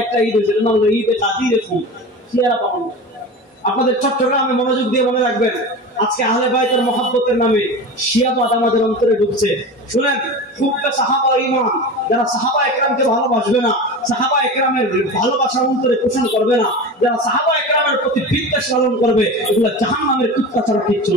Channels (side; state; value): both; normal; correlation 0.30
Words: একটা ঈদ হয়েছিল, না হলো ঈদে কাদিরে ফুল শিয়ারা পালন। আপনাদের চট্টগ্রামে মনোযোগ দিয়ে মনে রাখবেন, আজকে আহলে বাইতের মহব্বতের নামে শিয়াবাদ আমাদের অন্তরে ঢুকছে। শুনেন, হুব্বে সাহাবা ঈমান, যারা সাহাবা একরামকে ভালোবাসবে না, সাহাবা একরামের ভালোবাসা অন্তরে পোষণ করবে না, যারা সাহাবা একরামের প্রতি বিদ্বেষ লালন করবে, এগুলো জাহান্নামের কুত্তা ছাড়া কিচ্ছু